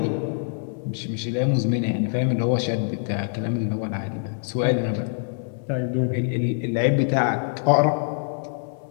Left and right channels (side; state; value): right; silent; 62 dB below the other